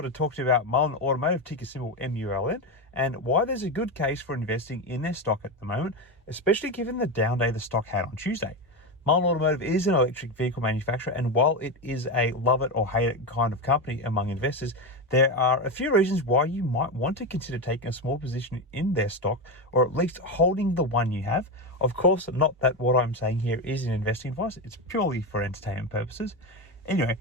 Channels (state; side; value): normal; both; correlation 0.14